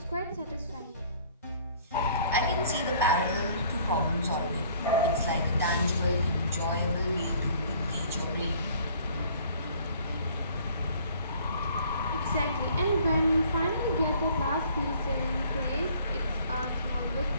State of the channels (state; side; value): inverted; both; correlation -0.55